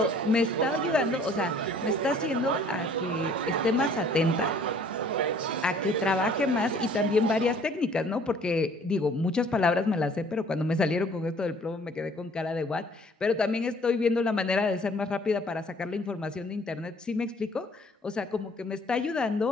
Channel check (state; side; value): normal; both; correlation 0.56